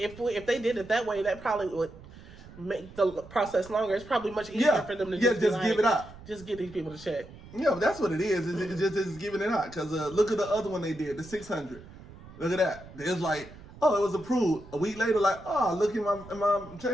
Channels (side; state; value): right; noise; rumble, 18 dB below the sound